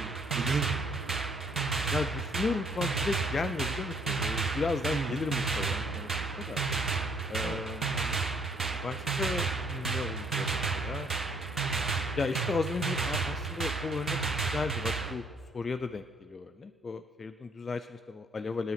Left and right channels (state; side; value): normal; both; correlation 0.65